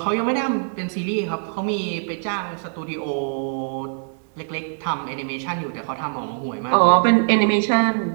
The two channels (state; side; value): silent; left; digital silence